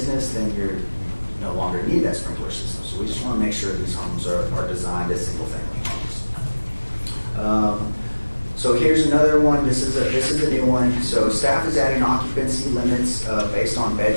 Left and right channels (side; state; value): both; inverted; correlation -1.00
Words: then you no longer need that sprinkler system. So we just want to make sure these homes are designed as single-family homes. So here's another one. This is a new one. So staff is adding occupancy limits based on